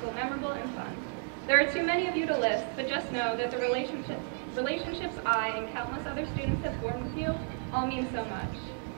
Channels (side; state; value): left; silent; 56 dB below the other